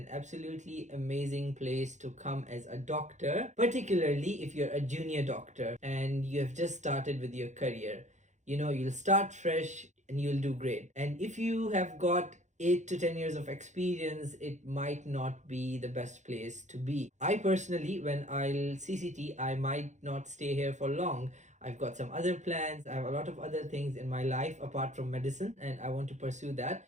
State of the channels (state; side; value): late; left; 0.34 ms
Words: absolutely amazing place to come as a doctor, particularly if you're a junior doctor and you have just started with your career. You'll start fresh and you'll do great. And if you have got 8 to 10 years of experience, it might not be the best place to be. I personally, when I'll CCT, I might not stay here for long. I've got some other plans. I have a lot of other things in my life apart from medicine, and I want to pursue that.